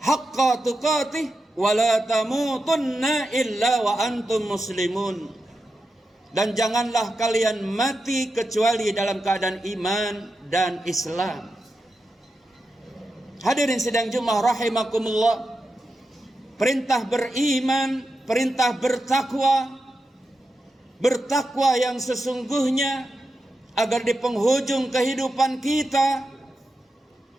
tuqatih wa la tamutunna illa wa antum muslimun. Dan janganlah kalian mati kecuali dalam keadaan iman dan Islam. Hadirin sidang Jumat rahimakumullah, perintah beriman, perintah bertakwa yang sesungguhnya, agar di penghujung kehidupan kita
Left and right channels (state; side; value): normal; both; correlation 0.89